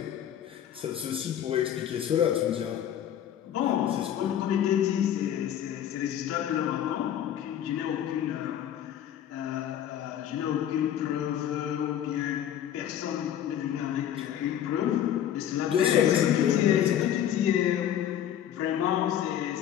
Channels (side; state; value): right; quieter; 10.4 dB